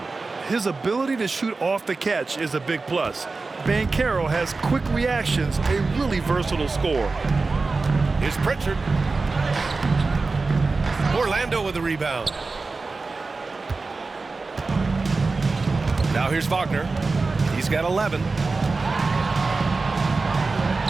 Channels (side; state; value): left; quieter; 3.9 dB